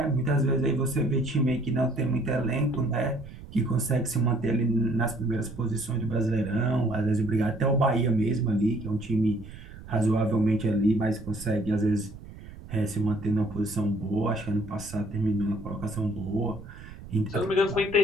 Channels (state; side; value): noise; right; rumble, 15 dB below the sound